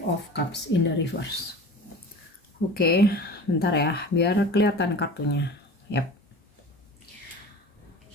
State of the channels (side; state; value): both; normal; correlation 0.37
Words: of Cups in the reverse. Oke, bentar ya, biar kelihatan kartunya. Yap.